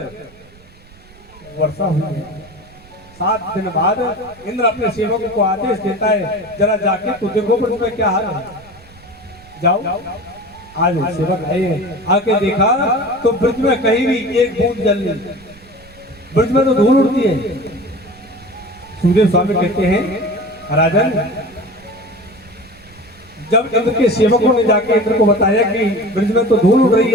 वर्षा हुई है। 7 दिन बाद इंद्र अपने सेवकों को आदेश देता है जरा जाके तो देखो ब्रज में क्या हाल है। जाओ। आज सेवक आए आके देखा तो ब्रज में कहीं भी एक बूंद जल नहीं। ब्रज में तो धूल उड़ती है। सुखदेव स्वामी कहते हैं राजन जब इंद्र के सेवकों ने जाके इंद्र को बताया कि ब्रज में तो धूल उड़ रही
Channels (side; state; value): right; noise; rumble, 25 dB below the sound